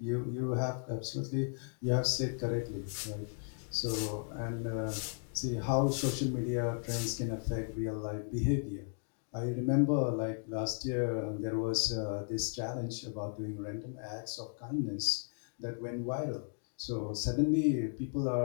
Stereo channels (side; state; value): right; silent; 54 dB below the other